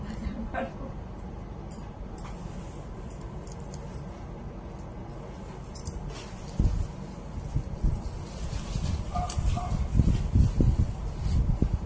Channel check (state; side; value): identical; both; correlation 1.00